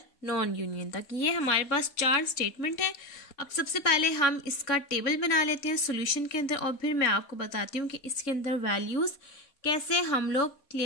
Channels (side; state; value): right; late; 3.5 ms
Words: नॉन यूनियन तक। ये हमारे पास 4 स्टेटमेंट है। अब सबसे पहले हम इसका टेबल बना लेते हैं सॉल्यूशन के अंदर, और फिर मैं आपको बताती हूँ कि इसके अंदर वैल्यूज़ कैसे हम लोग